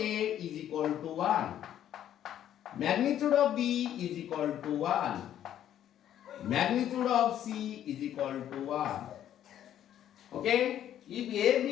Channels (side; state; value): right; quieter; 11.0 dB